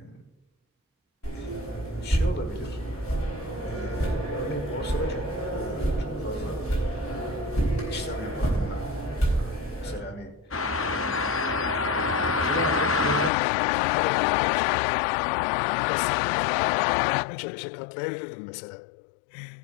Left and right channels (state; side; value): drops out; right; at 13.3 s